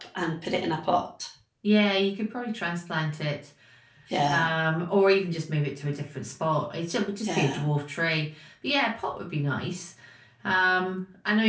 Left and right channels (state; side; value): identical; both; correlation 1.00